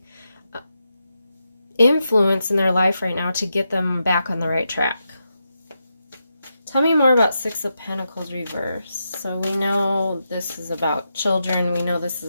influence in their life right now to get them back on the right track. Tell me more about Six of Pentacles reverse. So we know this is about children. We know this is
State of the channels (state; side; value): inverted; both; correlation -0.86